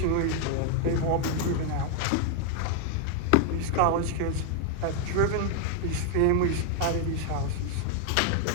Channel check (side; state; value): both; different; correlation 0.00